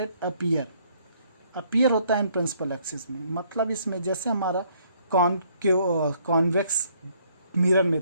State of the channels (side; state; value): both; inverted; correlation -0.66